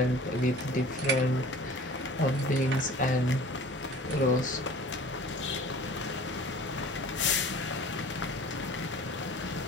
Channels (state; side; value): normal; both; correlation 0.44